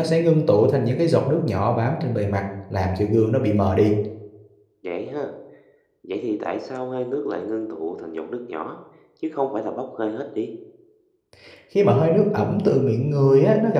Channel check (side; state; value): both; identical; correlation 1.00